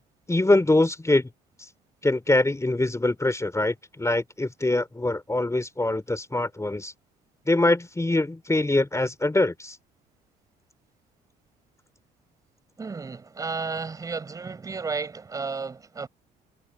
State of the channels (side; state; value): both; normal; correlation 0.83